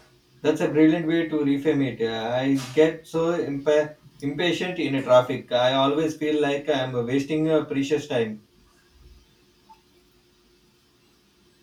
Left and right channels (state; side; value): identical; both; correlation 1.00